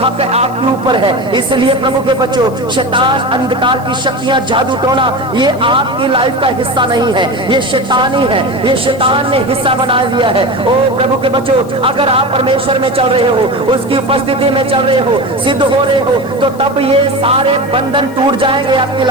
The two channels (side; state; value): left; noise; hiss, 24 dB below the sound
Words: हक आपके ऊपर है। इसलिए प्रभु के बच्चों, शैतान, अंधकार की शक्तियां, जादू टोना, ये आपकी लाइफ का हिस्सा नहीं है, ये शैतानी है, ये शैतान ने हिस्सा बना लिया है। ओ प्रभु के बच्चों, अगर आप परमेश्वर में चल रहे हो, उसकी उपस्थिति में चल रहे हो, सिद्ध हो रहे हो, तो तब ये सारे बंधन टूट जाएंगे आपकी